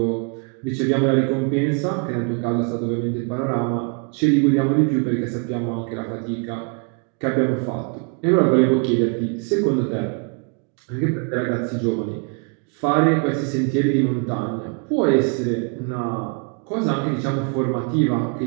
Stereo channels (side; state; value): left; quieter; 35.4 dB